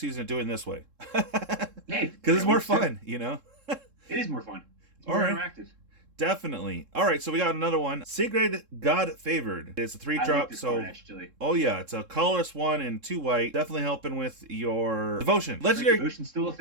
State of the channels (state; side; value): late; left; 3.7 ms